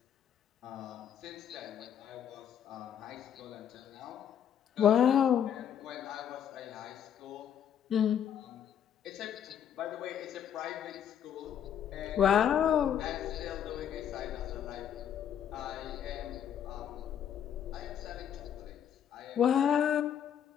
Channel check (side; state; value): right; quieter; 9.2 dB